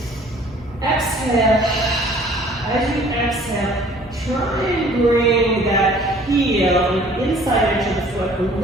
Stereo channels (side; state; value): both; normal; correlation 0.53